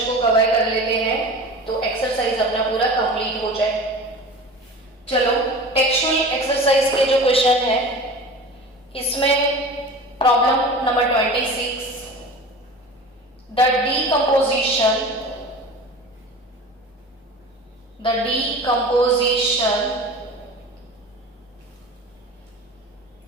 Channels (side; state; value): both; normal; correlation 0.36